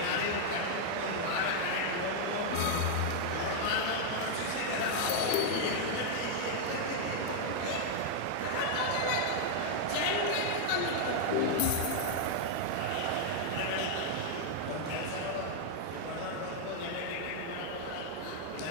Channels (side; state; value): both; different; correlation 0.00